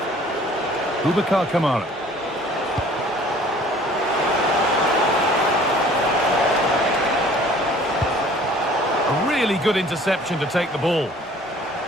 Boubacar Kamara. A really good interception to take the ball.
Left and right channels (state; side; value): normal; both; correlation 0.52